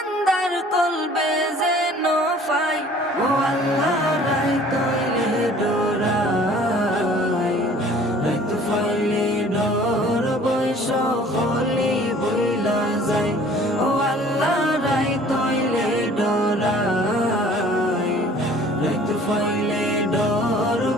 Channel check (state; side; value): normal; both; correlation 0.51